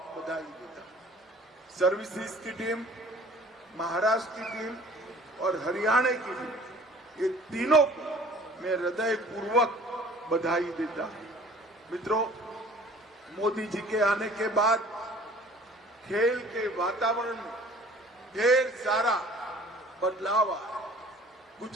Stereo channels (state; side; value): normal; both; correlation 0.49